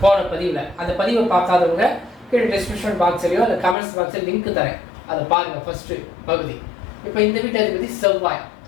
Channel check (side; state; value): right; drops out; at 3.8 s